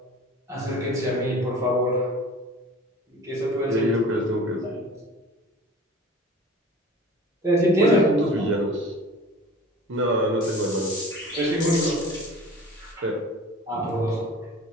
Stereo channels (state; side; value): normal; both; correlation 0.42